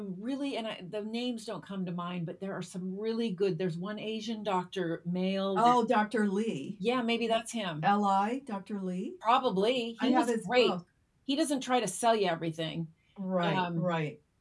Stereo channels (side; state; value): both; identical; correlation 1.00